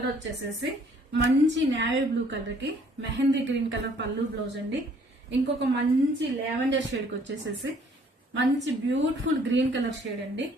వచ్చేసేసి మంచి నేవీ బ్లూ కలర్ కి మెహందీ గ్రీన్ కలర్ పళ్ళు బ్లౌజ్ అండి. ఇంకొక మంచి లావెండర్ షేడ్ కి వచ్చేసేసి మంచి బ్యూటిఫుల్ గ్రీన్ కలర్ షేడ్ అండి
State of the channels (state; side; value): normal; both; correlation 0.60